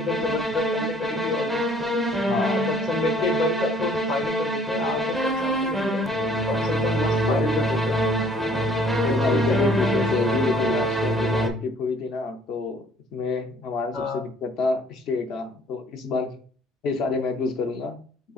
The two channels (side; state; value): both; normal; correlation 0.58